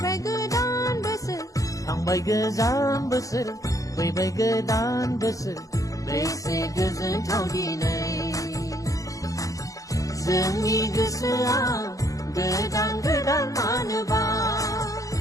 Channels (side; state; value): right; late; 0.16 ms